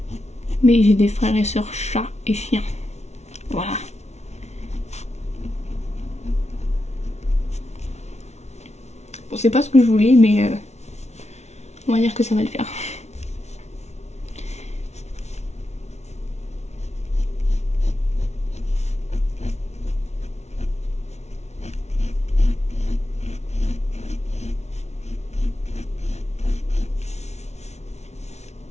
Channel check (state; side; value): late; right; 0.32 ms